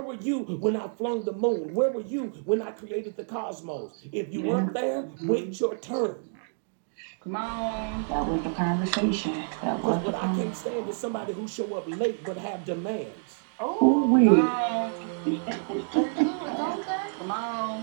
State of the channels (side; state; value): left; silent; digital silence